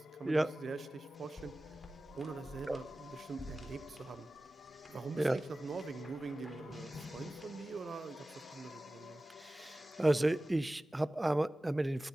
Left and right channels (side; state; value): both; normal; correlation 0.96